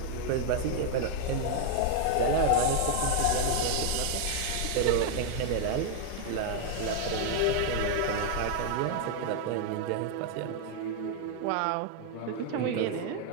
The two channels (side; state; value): both; different; correlation 0.01